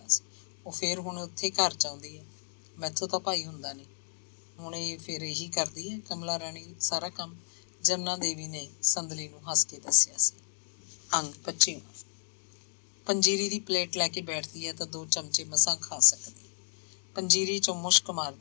ਸੀ। ਉਹ ਫਿਰ ਹੁਣ ਉੱਥੇ ਘਰ ਚਾਹੁੰਦੀ ਹੈ। ਮੈਥੋਂ ਤਾਂ ਭਾਈ ਹੁੰਦਾ ਨਹੀਂ। ਹੁਣ ਇਹ ਫਿਰ ਇਹੀ ਕਰਦੀ ਹੈ ਕਮਲਾ ਰਾਣੀ ਸਾਰਾ ਕੰਮ। ਜਮਨਾ ਦੇਵੀ ਨੇ ਸੰਦਲੀ ਨੂੰ ਹੱਸ ਕੇ ਦੱਸਿਆ ਸੀ। ਅੰਗ 25। ਪੰਜੀਰੀ ਦੀ ਪਲੇਟ ਲੈ ਕੇ ਬੈਠਦੀ ਹੈ ਤਾਂ 2 ਚਮਚੇ ਮਸਾਂ ਖਾ ਸਕਦੀ। ਪੰਜੀਰੀ ਚੋਂ ਮੁਸ਼ਕ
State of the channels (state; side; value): silent; right; digital silence